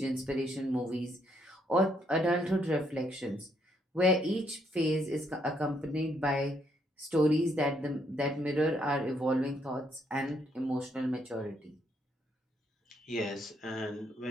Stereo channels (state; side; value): normal; both; correlation 0.73